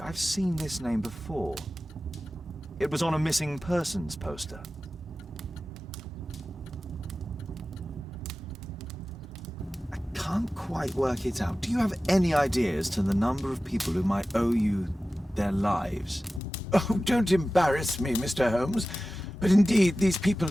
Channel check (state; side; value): normal; both; correlation 0.95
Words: I've seen this name before. It was on a missing persons poster. I can't quite work it out. Do you have any idea as to the number of people who might owe you their lives? Oh, don't embarrass me, Mr. Holmes. But indeed, these people